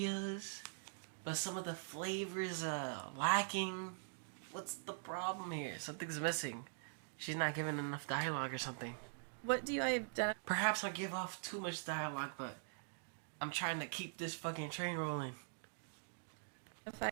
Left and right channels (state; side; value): silent; left; digital silence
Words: but some of the flavors lacking. What's the problem here? Something's missing. She's not giving enough dialogue or something. What do I identify Perhaps I give off too much dialogue, but I'm trying to keep this fucking train rolling.